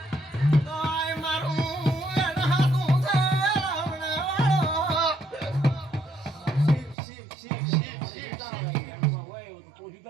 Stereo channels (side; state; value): left; drops out; at 7.0 s